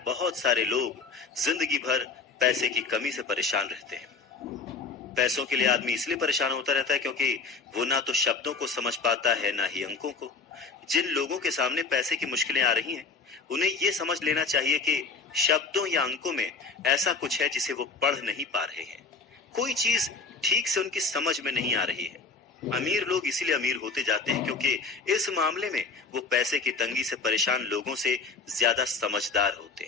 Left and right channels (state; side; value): quieter; right; 4.4 dB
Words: बहुत सारे लोग जिंदगी भर पैसे की कमी से परेशान रहते हैं। पैसों के लिए आदमी इसलिए परेशान होता रहता है क्योंकि वो ना तो शब्दों को समझ पाता है ना ही अंकों को। जिन लोगों के सामने पैसे की मुश्किलें आ रही हैं, उन्हें ये समझ लेना चाहिए कि शब्दों या अंकों में ऐसा कुछ है जिसे वो पढ़ नहीं पा रहे हैं। कोई चीज ठीक से उनकी समझ में नहीं आ रही है। अमीर लोग इसीलिए अमीर होते जाते हैं क्योंकि इस मामले में वो पैसे की तंगी से परेशान लोगों से ज्यादा समझदार होते